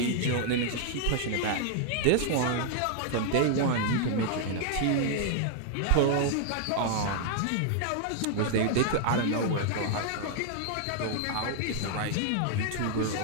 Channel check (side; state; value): both; different; correlation 0.00